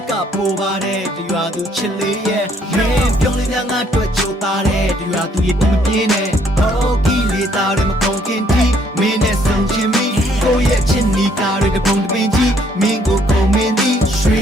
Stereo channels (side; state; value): both; normal; correlation 0.66